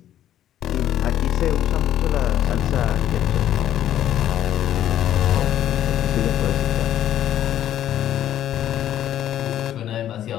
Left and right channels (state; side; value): quieter; right; 11.5 dB